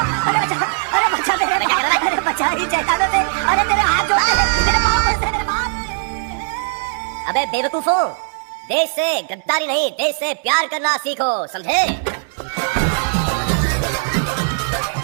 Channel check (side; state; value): left; silent; digital silence